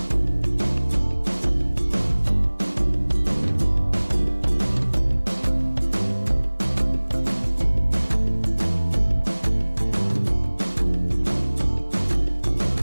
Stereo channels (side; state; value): both; inverted; correlation -1.00